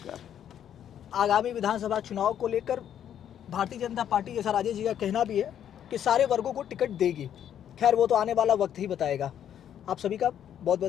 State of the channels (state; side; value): quieter; right; 9.8 dB